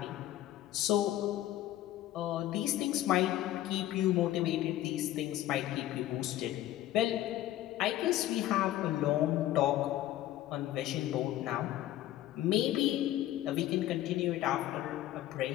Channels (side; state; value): right; quieter; 13.9 dB